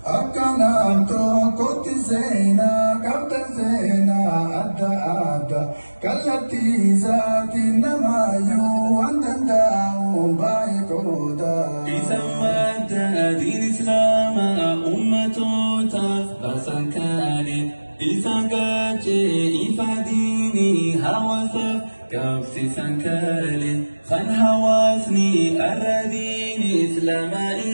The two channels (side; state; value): both; inverted; correlation -1.00